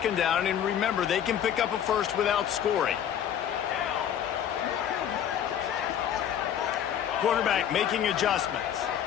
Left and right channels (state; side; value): quieter; right; 9.6 dB